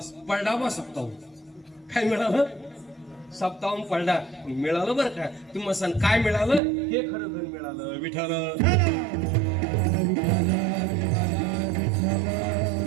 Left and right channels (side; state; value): left; drops out; at 6.6 s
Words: पडला बा सप्ताहून. काय मिळालं? सप्ताहून पडला मिळालं बरं का. तुम्हाला सांग काय मिळालं? हे खरं धन मिळालं विठ्ठल.